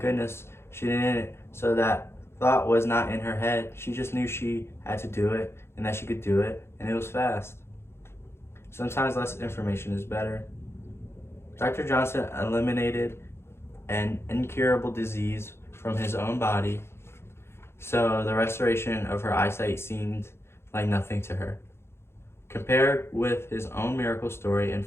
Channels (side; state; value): right; late; 0.12 ms